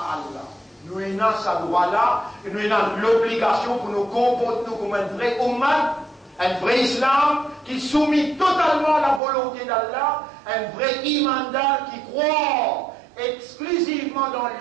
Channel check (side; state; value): left; drops out; at 9.2 s